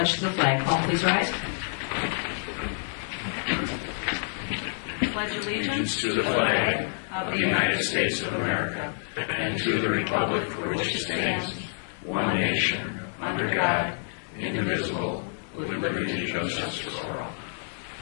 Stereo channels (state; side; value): silent; right; 60 dB below the other